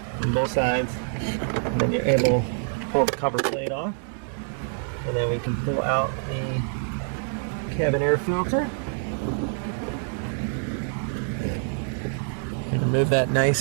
on both sides, and then you're able to pull the cover plate off. And then we can pull out the cabin air filter and remove that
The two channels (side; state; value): left; silent; 58 dB below the other